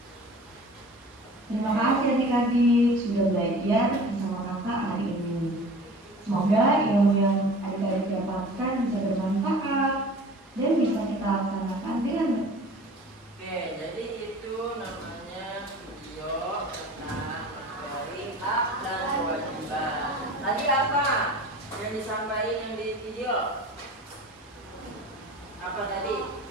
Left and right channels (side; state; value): both; normal; correlation 0.41